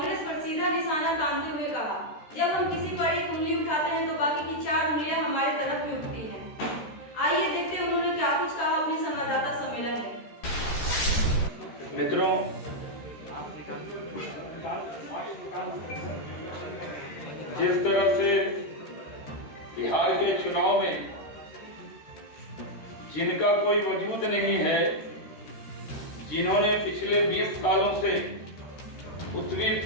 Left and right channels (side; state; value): right; late; 13 ms